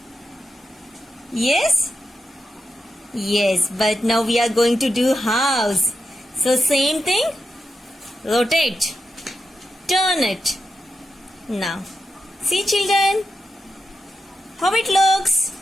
Yes? Yes, but now we are going to do house. So same thing, rotate, turn it. Now, see, children, how it looks.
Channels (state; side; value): normal; both; correlation 0.88